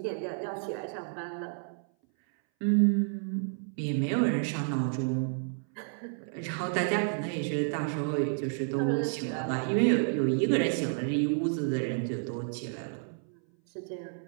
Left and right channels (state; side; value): silent; left; 57 dB below the other